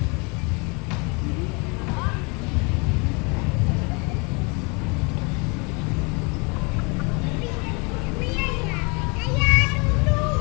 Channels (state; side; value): quieter; right; 31.0 dB